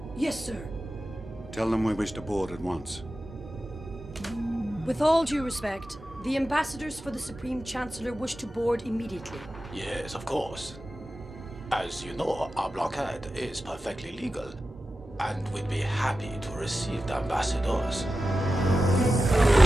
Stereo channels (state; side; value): normal; both; correlation 0.93